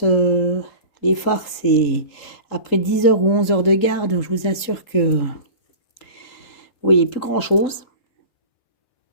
les phares, c'est après 10 heures ou 11 heures de garde, je vous assure que oui, plus grand-chose.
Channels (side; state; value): right; late; 3.8 ms